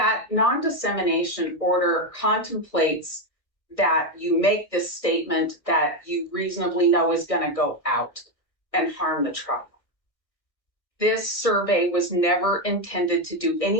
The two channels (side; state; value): right; late; 1.5 ms